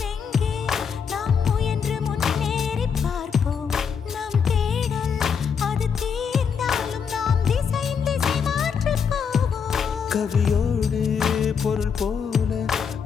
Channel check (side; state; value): right; quieter; 6.6 dB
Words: நாம் முயன்று முன்னேறி பார்ப்போம் நம் தேடல் அது தீர்ந்தாலும் நாம் திசை மாற்றி போவோம் கவியோடு பொருள் போல